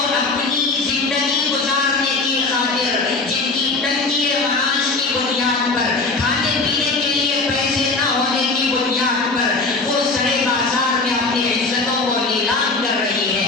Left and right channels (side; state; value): right; quieter; 3.6 dB